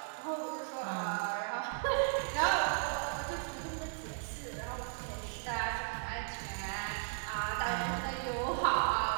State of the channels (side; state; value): left; silent; digital silence